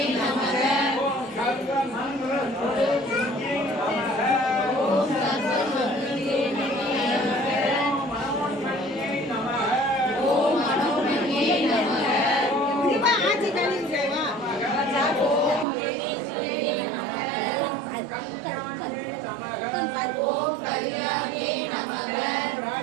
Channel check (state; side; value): drops out; left; at 15.7 s